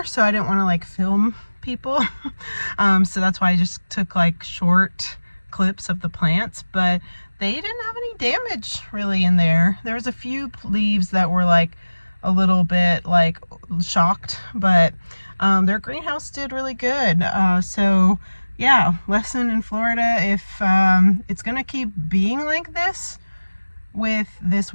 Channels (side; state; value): both; inverted; correlation -1.00